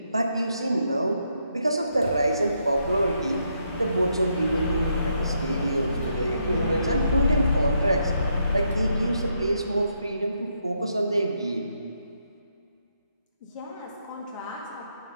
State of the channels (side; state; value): both; inverted; correlation -0.77